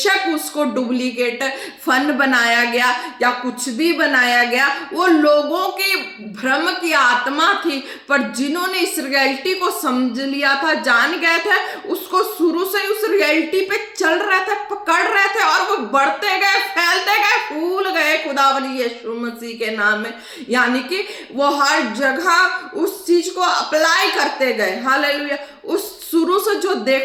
उसको डुप्लीकेट फन बनाया गया या कुछ भी बनाया गया, वो लोगों के भ्रम की आत्मा थी, पर जिन्होंने इस रियलिटी को समझ लिया था, जान गए थे, उसको शुरू से उस रियलिटी पे चल रहे थे, पकड़ रहे थे और वो बढ़ते गए, फैलते गए, फूल गए खुदावंद यीशु मसीह के नाम में. यानी कि वो हर जगह उस चीज को अप्लाई करते गए. हालेलुया. उस शुरू से जो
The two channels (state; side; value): identical; both; correlation 1.00